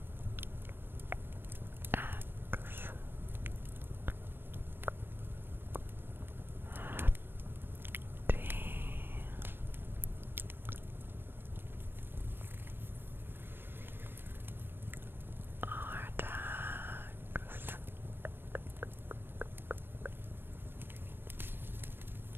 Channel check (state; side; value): late; left; 0.098 ms